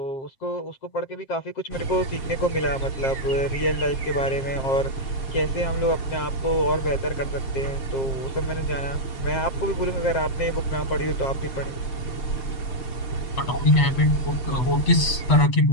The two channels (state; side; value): late; right; 8.1 ms